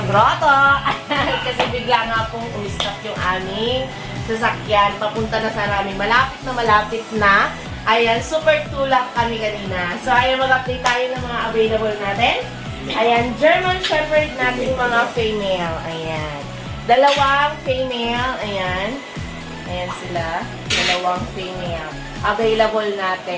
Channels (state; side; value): identical; both; correlation 1.00